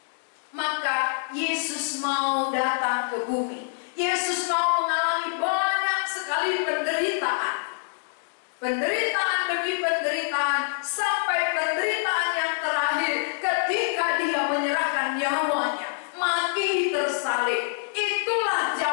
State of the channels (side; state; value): right; silent; 61 dB below the other